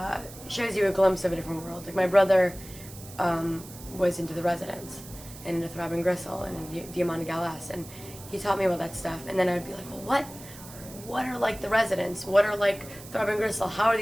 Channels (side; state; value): right; noise; hiss, 17 dB below the sound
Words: shows you a glimpse of a different world. Like my brother was into the Residents and into Throbbing Gristle and into Diamante Galas, and he taught me about that stuff. And then I'd be like, well, what are like the Residents? What are like Throbbing Gristle? How are